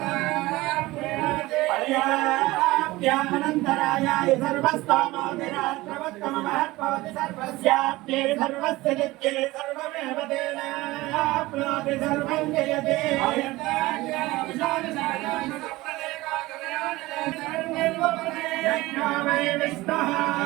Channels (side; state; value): left; quieter; 19.5 dB